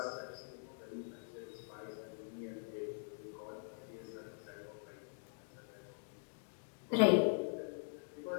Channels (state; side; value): silent; right; digital silence